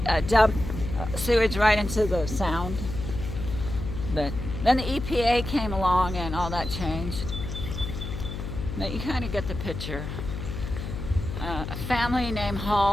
dump sewage right into the sound, but then the EPA came along and all that changed. But you kind of get the picture. A family named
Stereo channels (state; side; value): noise; left; hum, 6 dB below the sound